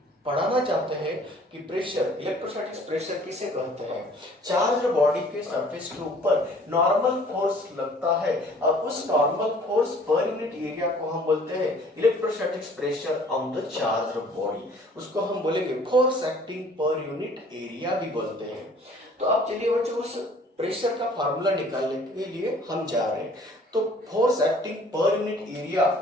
पढ़ाना चाहते हैं कि प्रेशर, इलेक्ट्रोस्टैटिक्स प्रेशर किसे कहते हैं? चार्ज बॉडी के सरफेस के ऊपर नॉर्मल फोर्स लगता है, और उस normal force per unit area को हम बोलते हैं electrostatics pressure on the charge body. उसको हम बोलेंगे force acting per unit area भी बोलते हैं। तो आप चलिए बच्चों उस प्रेशर का फार्मूला निकालने के लिए हम जा रहे हैं। तो force acting per unit area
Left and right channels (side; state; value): both; normal; correlation 0.54